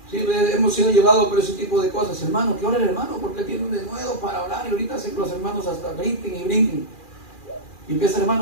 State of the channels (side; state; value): right; late; 2.4 ms